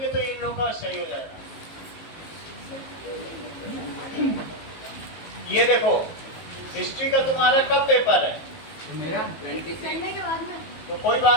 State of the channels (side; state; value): right; late; 19 ms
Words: तो इन लोगों का सही हो जाएगा। ये देखो हिस्ट्री का तुम्हारा कब पेपर है? मेरा संडे के बाद में तो कोई